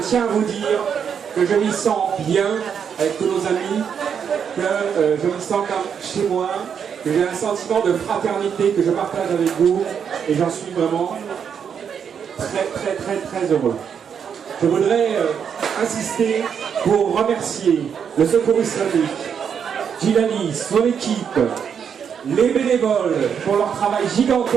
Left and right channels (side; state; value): left; quieter; 7.4 dB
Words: à vous dire que je m'y sens bien avec tous nos amis, que je me sens comme chez moi, que j'ai un sentiment de fraternité que je partage avec vous et j'en suis vraiment très heureux. Je voudrais insister pour remercier le Secours Islamique, Djilali, son équipe, les bénévoles pour leur travail